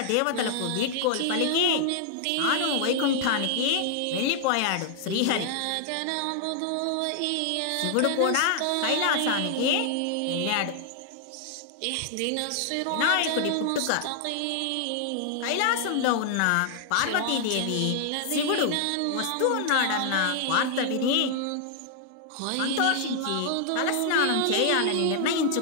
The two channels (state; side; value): different; both; correlation 0.00